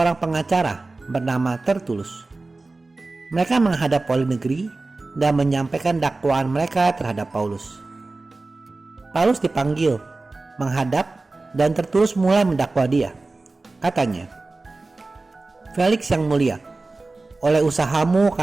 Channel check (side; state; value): left; quieter; 3.4 dB